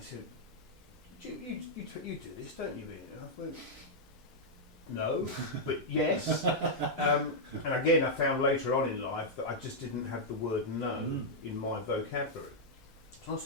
you do this, don't you, Ian? And I went, no, but yes. And again, I found later on in life that I just didn't have the word no in my vocabulary. So I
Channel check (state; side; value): normal; both; correlation -0.06